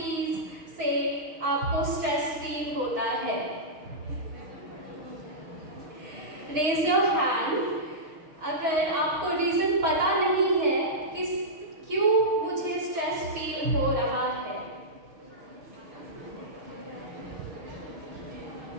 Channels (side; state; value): left; late; 6.2 ms